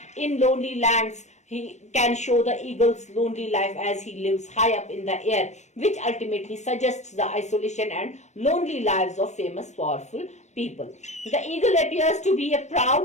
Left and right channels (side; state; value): right; late; 0.33 ms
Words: In lonely lands he can show the eagle's lonely life as he lives high up in the air, which ultimately suggests the isolation and lonely lives of famous powerful people. The eagle appears to be